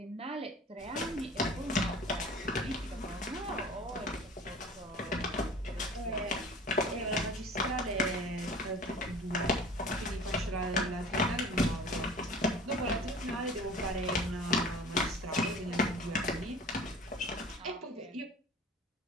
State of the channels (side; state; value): both; normal; correlation 0.44